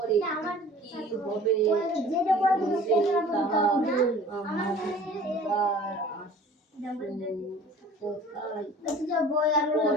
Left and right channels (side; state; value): both; normal; correlation 0.46